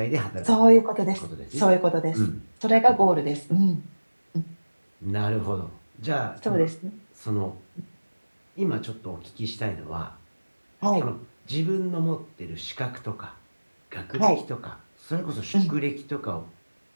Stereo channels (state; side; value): inverted; both; correlation -1.00